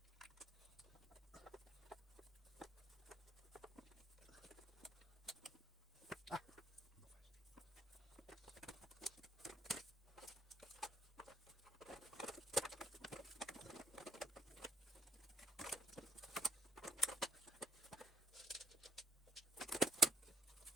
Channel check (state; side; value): normal; both; correlation 0.67